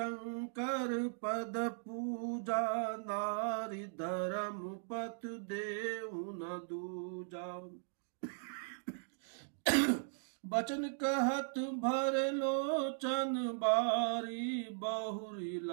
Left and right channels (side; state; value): left; silent; digital silence